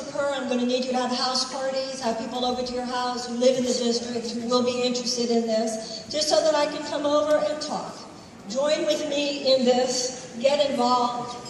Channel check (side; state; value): both; identical; correlation 1.00